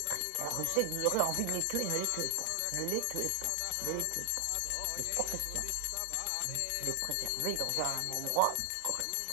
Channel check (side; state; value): both; different; correlation 0.00